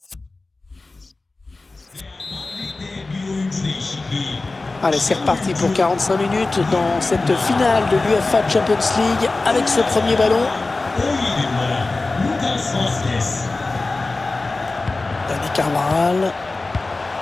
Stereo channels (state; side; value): quieter; right; 3.4 dB